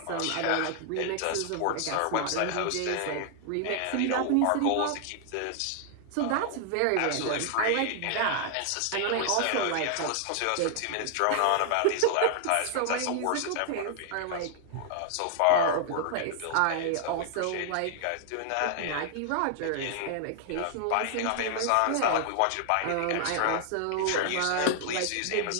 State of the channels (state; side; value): different; both; correlation 0.00